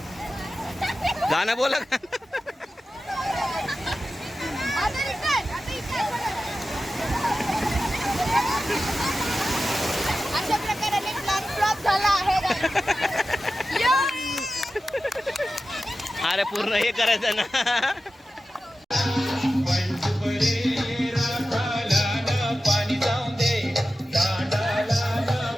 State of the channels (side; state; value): both; normal; correlation 0.93